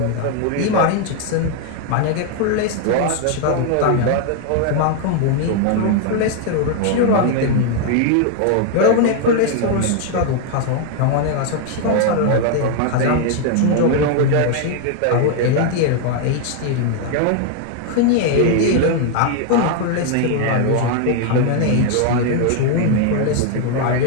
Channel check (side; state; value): both; different; correlation 0.00